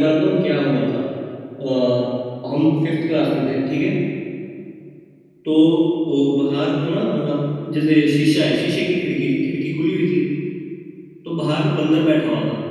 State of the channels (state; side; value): identical; both; correlation 1.00